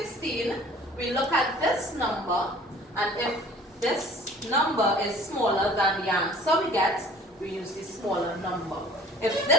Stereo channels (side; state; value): both; normal; correlation 0.49